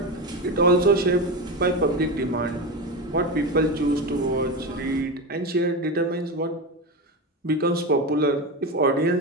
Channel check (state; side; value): normal; both; correlation 0.19